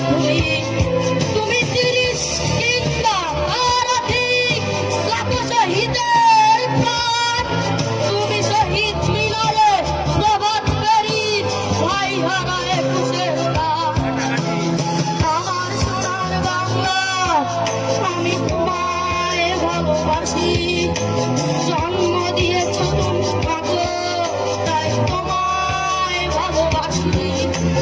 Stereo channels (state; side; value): identical; both; correlation 1.00